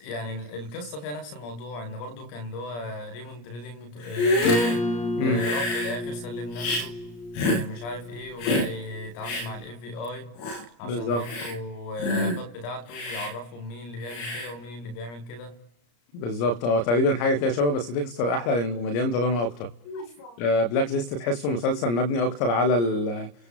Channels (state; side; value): late; right; 34 ms